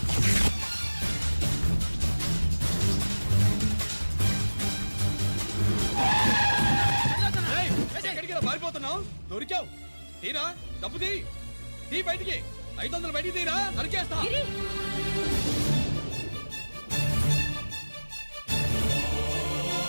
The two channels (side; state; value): both; inverted; correlation -1.00